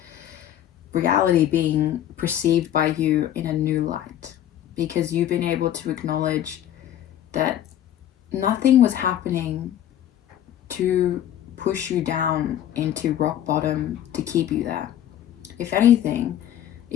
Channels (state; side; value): quieter; right; 11.3 dB